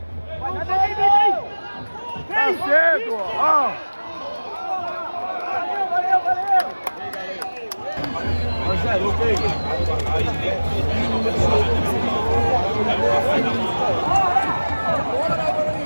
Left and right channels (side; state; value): both; inverted; correlation -1.00